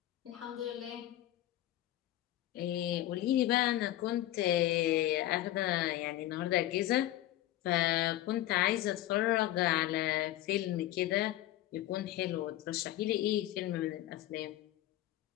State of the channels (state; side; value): quieter; right; 14.6 dB